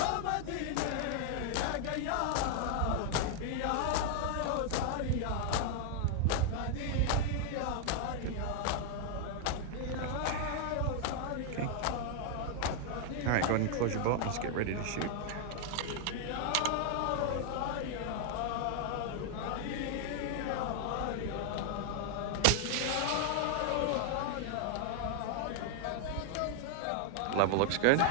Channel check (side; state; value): both; different; correlation 0.00